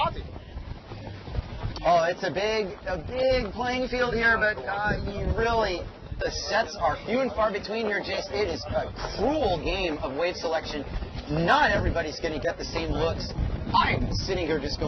Oh, it's a big playing field here, but the sets are few and far between here, Jace. It is a cruel game of wave selection. Not everybody's going to get the same looks. I'm sitting here just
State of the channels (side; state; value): both; identical; correlation 1.00